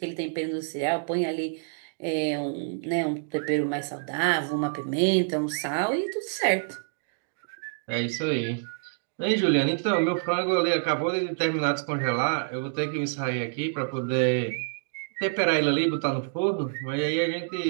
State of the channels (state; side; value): silent; left; digital silence